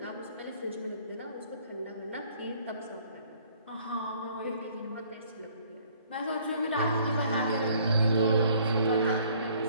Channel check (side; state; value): both; inverted; correlation -0.59